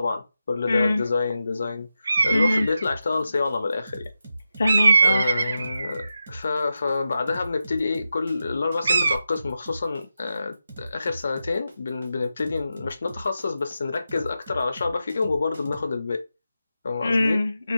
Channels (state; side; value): inverted; both; correlation -0.89